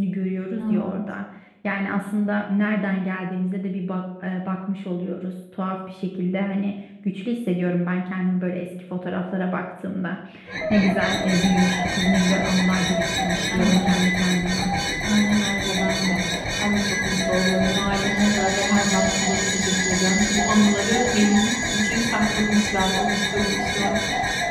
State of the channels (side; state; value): both; identical; correlation 1.00